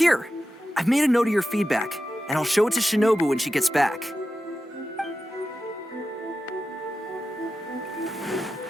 I've made a note of your feedback, and I'll show it to Shinobu when she gets back.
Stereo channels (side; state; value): both; normal; correlation 0.92